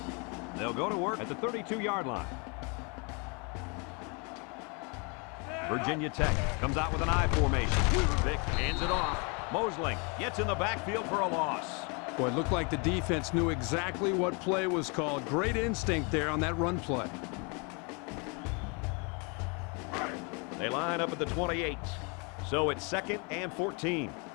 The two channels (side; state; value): right; quieter; 33.0 dB